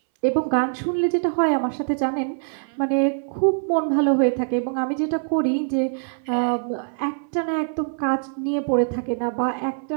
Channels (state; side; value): silent; left; 63 dB below the other